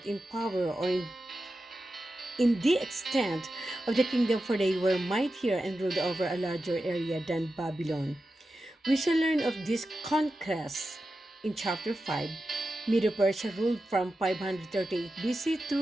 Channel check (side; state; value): both; normal; correlation 0.91